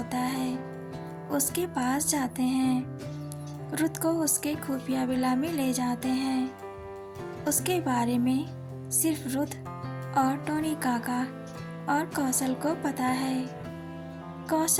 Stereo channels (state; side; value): identical; both; correlation 1.00